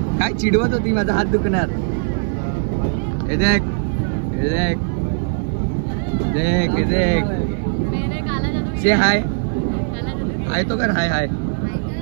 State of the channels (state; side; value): silent; left; digital silence